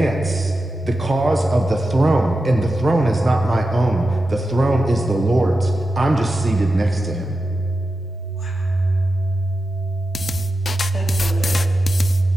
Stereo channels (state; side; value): normal; both; correlation 0.91